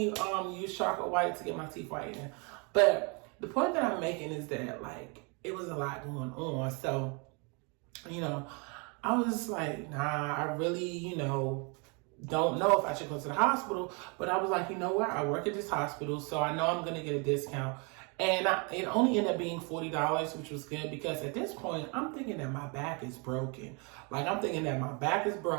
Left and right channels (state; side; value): quieter; left; 33.0 dB